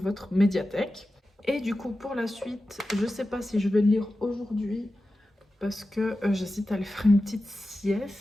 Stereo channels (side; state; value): both; normal; correlation 0.93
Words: médiathèque. Et du coup, pour la suite, je ne sais pas si je vais le lire aujourd'hui parce que j'hésite à aller faire une petite